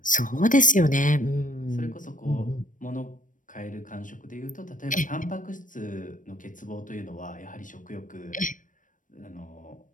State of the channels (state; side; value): late; right; 0.38 ms